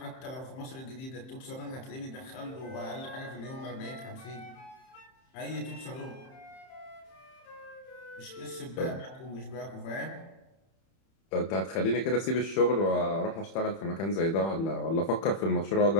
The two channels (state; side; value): late; right; 31 ms